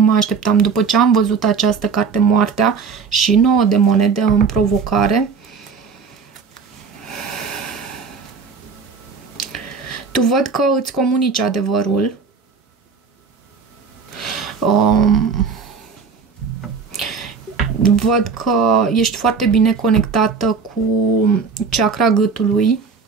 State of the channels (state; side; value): quieter; left; 5.4 dB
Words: așteptam. După ce am văzut această carte, moartea, și 9 de monede în provocare. Tu văd că îți comunici adevărul. Văd că ești foarte bine conectată cu chakra gâtului.